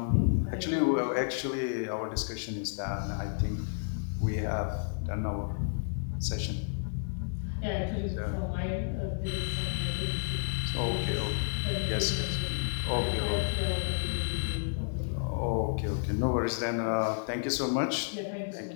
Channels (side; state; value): right; silent; digital silence